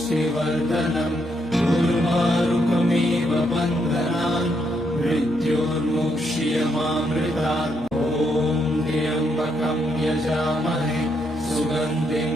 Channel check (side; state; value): both; normal; correlation 0.77